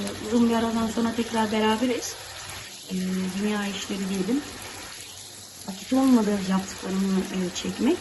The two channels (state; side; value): identical; both; correlation 1.00